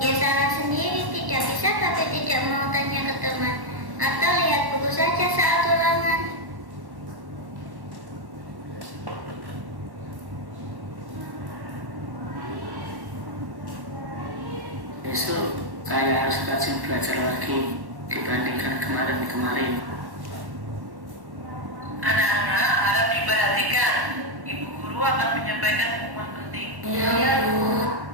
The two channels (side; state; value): left; late; 1.1 ms